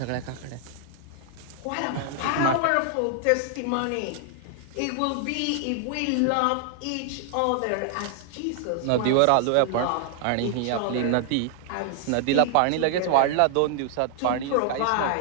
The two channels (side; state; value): both; different; correlation 0.00